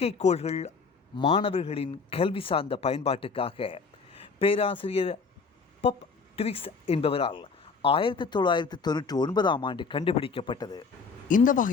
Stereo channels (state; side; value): quieter; right; 4.9 dB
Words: மாணவர்களின் கல்வி சார்ந்த பயன்பாட்டுக்காக பேராசிரியர் பப் ட்விக்ஸ் என்பவரால் 1999ஆம் ஆண்டு கண்டுபிடிக்கப்பட்டது. இந்த